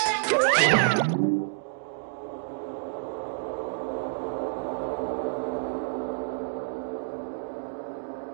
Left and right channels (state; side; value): silent; left; digital silence